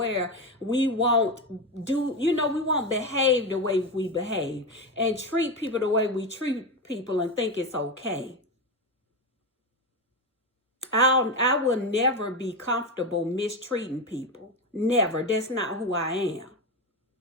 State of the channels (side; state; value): both; normal; correlation 0.15